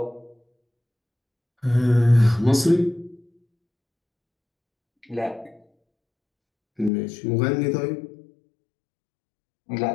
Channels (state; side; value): drops out; right; at 6.9 s